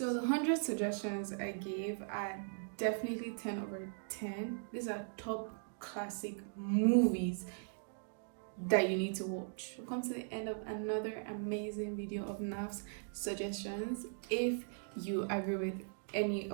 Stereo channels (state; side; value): silent; left; digital silence